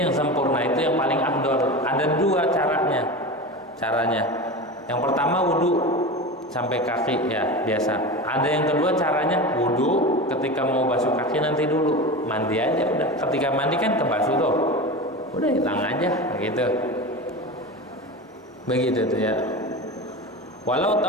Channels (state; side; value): normal; both; correlation 0.27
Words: yang sempurna, itu yang paling afdal. Ada 2 caranya. Yang pertama wudu sampai kaki ya biasa. Ada yang kedua caranya wudu ketika mau basuh kaki nanti dulu, mandi aja udah. Ketika mandi kan kebasuh tuh, udah hilang aja gitu. Begitu tuh ya. Walau